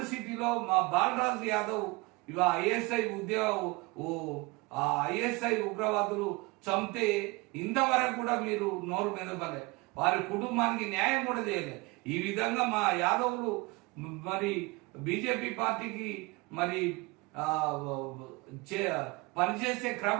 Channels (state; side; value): quieter; left; 25.0 dB